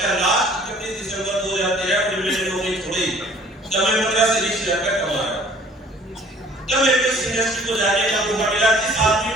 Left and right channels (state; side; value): normal; both; correlation 0.53